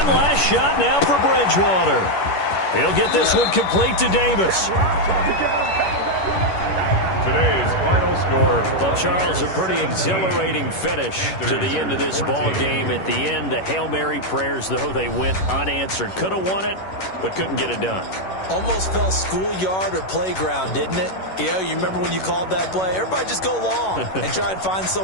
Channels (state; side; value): late; right; 11 ms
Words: last shot now for Bridgewater. He'll get this one complete to Davis. Today's final score. Well, Charles, a pretty exhilarating finish to the end of this ball game. At the end, the Hail Mary prayers, though, they went unanswered. Could have won it, but couldn't get it done. Almost felt schoolyard or playground, didn't it? You remember when you called that play? Everybody just go long and try and find